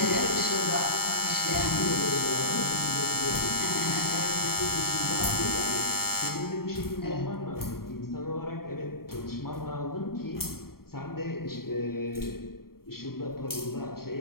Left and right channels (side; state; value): right; late; 0.93 ms